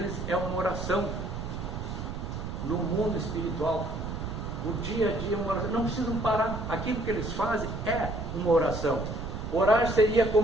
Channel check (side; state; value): right; noise; rumble, 5 dB below the sound